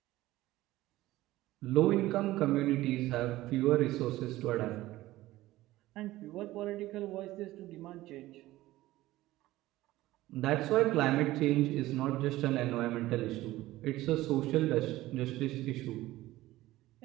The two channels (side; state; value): left; quieter; 16.8 dB